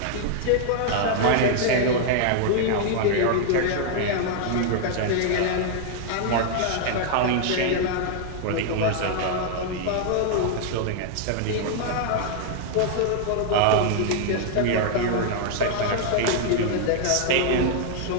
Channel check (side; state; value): both; different; correlation 0.00